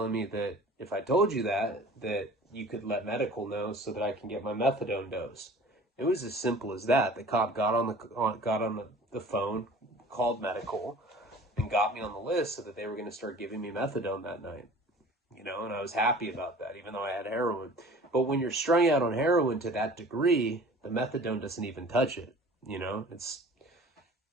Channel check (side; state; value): both; normal; correlation 0.45